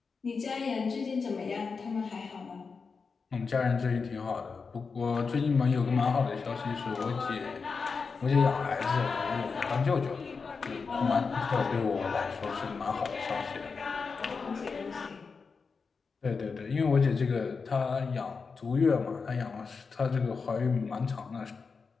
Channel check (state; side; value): quieter; right; 5.0 dB